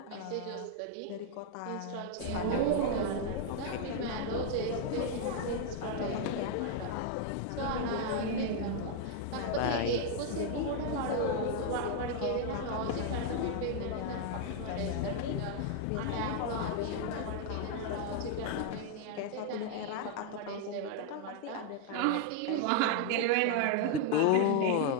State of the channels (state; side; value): different; both; correlation 0.00